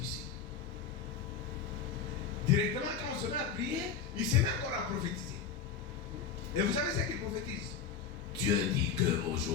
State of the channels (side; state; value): right; quieter; 6.5 dB